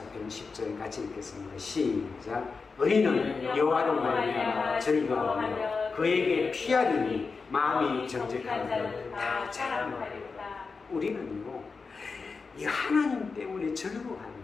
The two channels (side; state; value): right; quieter; 4.6 dB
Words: 10절 같이 읽겠습니다. 시작. 의인은 여호와로 말미암아 즐거워하며 그에게 피하리니 마음이 정직한 자는 다 자랑하리로다. 우리는요 이 하나님 때문에